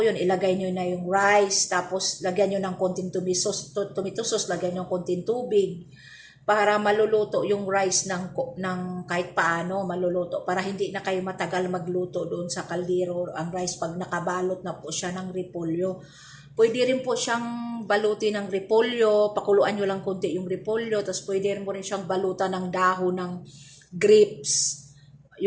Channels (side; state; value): both; identical; correlation 1.00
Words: ilagay nyo na yung rice. Tapos, lagyan nyo ng konting tomato sauce, lagyan nyo ng konting tubig. Para maluluto yung rice ng kahit paano, maluluto. Para hindi na kayo matagal magluto doon sa kaldero. Ang rice, pag nakabalot na po siya ng repolyo. Pwede rin po siyang balutin ng repolyo, pakuluan nyo lang konti yung repolyo, tapos pwede rin mo rin siyang balutan ng dahon ng grapes.